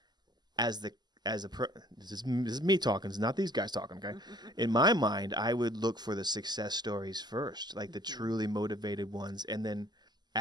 this is me talking. It's not these guys talking, okay? In my mind, I would look for the success stories first, like the truly motivated ones. And then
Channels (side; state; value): left; late; 0.21 ms